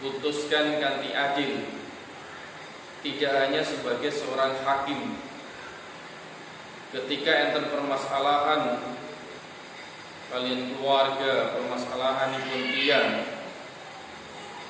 kanthi adil, tidak hanya sebagai seorang hakim. Ketika enten permasalahan kalian keluarga, permasalahan pun tiyang,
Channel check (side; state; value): both; identical; correlation 1.00